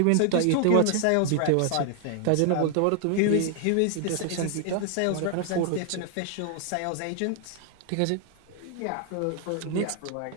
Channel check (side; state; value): both; different; correlation 0.00